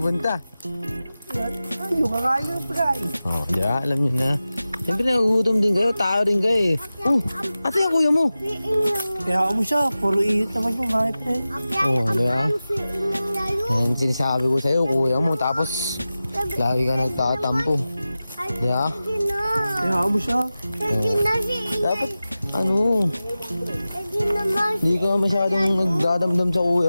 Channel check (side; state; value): both; inverted; correlation -0.95